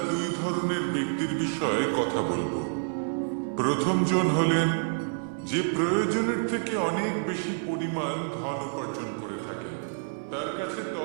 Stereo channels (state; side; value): silent; left; 57 dB below the other